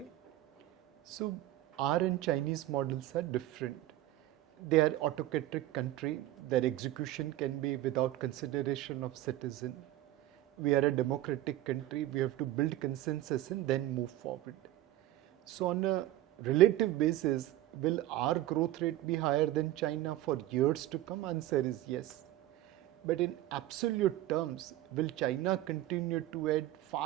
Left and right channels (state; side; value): quieter; left; 14.8 dB